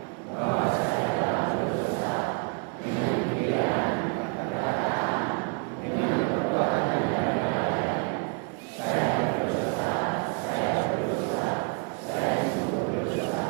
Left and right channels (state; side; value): quieter; left; 35.3 dB